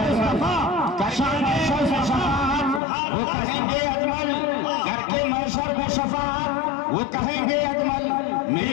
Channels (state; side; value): drops out; right; at 2.8 s